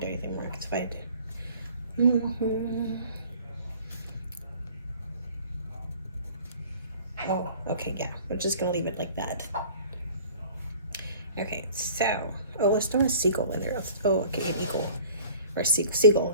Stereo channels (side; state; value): both; inverted; correlation -0.48